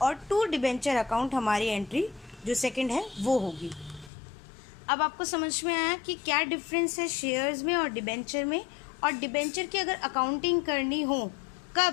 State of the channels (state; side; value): drops out; right; at 4.1 s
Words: और टू डिबेंचर अकाउंट हमारी एंट्री जो सेकंड है वो होगी। अब आपको समझ में आया कि क्या डिफरेंस है शेयर्स में और डिबेंचर में। और डिबेंचर की अगर अकाउंटिंग करनी हो